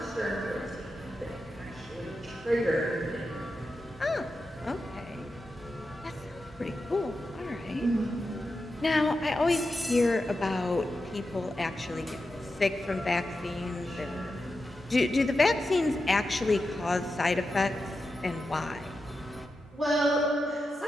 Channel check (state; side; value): normal; both; correlation 0.90